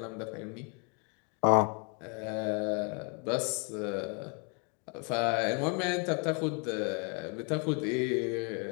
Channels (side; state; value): right; quieter; 36.3 dB